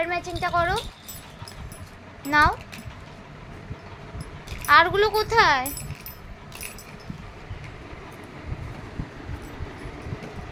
ম্যাচিংটা করো। নাও। আরগুলো কোথায়?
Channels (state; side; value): identical; both; correlation 1.00